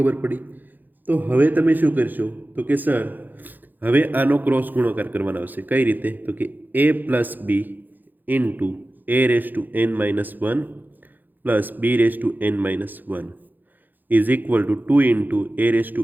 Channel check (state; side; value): late; left; 0.087 ms